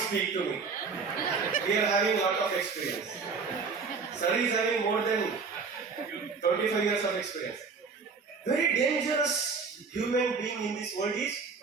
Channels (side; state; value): left; quieter; 5.0 dB